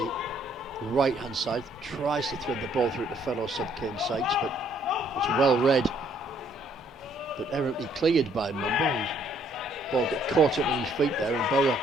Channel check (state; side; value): normal; both; correlation 0.66